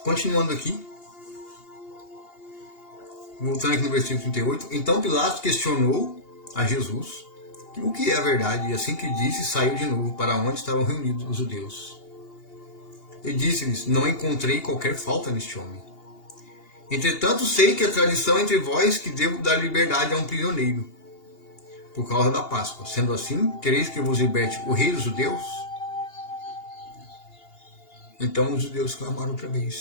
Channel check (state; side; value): late; right; 2.8 ms